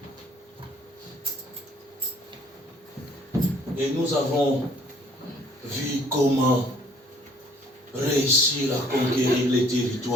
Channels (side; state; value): both; normal; correlation 0.59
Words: Et nous avons vu comment réussir à conquérir les